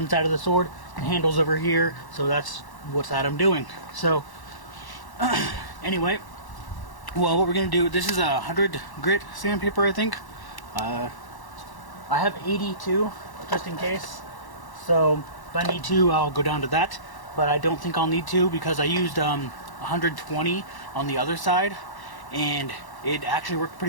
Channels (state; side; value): late; right; 1.1 ms